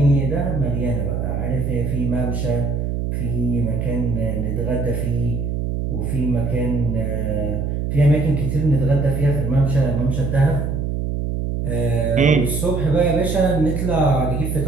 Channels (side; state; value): right; noise; hum, 1 dB below the sound